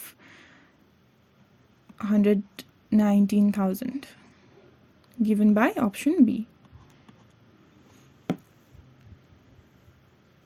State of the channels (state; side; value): identical; both; correlation 1.00